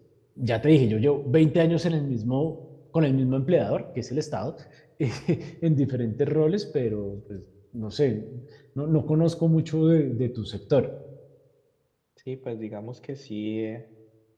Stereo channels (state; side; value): identical; both; correlation 1.00